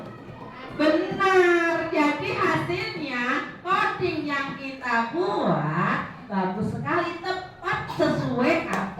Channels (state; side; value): identical; both; correlation 1.00